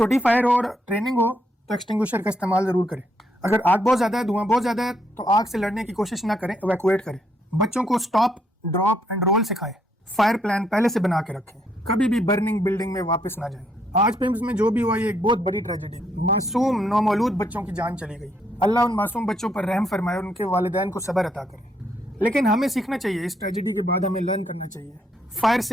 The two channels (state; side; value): normal; both; correlation 0.74